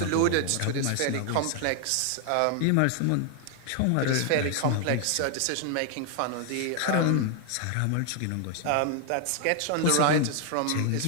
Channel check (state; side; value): different; both; correlation 0.00